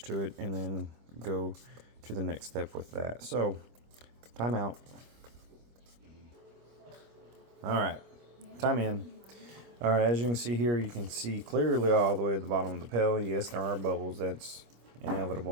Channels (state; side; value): late; left; 25 ms